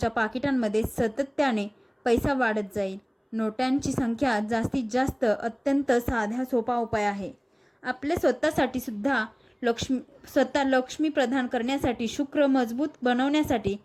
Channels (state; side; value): identical; both; correlation 1.00